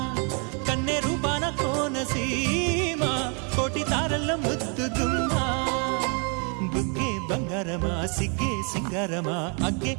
కన్నె రూపాన కోనసీమ కోటి తారల్లో ముద్దుదుమ్మా బుగ్గే బంగారమా సిగ్గే సింగారమా అగ్గే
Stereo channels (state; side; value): quieter; left; 36.8 dB